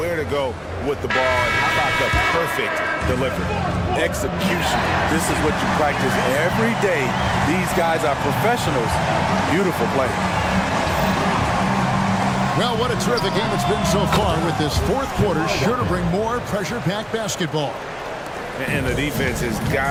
to go with the ball. And how about the perfect delivery? Execution. This is what you practice every day. These guys are professionals. Beautiful play. Well, what a terrific game it's been so far with this fourth quarter. Sure to bring more pressure-packed basketball. And the defense has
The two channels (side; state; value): both; identical; correlation 1.00